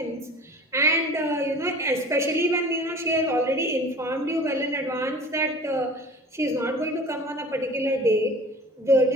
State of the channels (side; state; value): both; normal; correlation 0.43